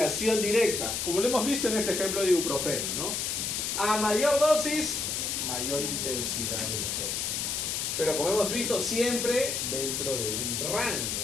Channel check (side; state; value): left; noise; hiss, 1 dB below the sound